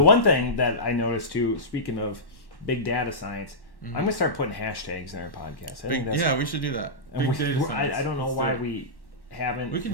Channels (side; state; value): right; late; 1.1 ms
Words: one thing that I noticed too, speaking of big data science, I'm gonna start putting hashtags in our podcast. We should do that. Big data science. I don't know why we haven't. We can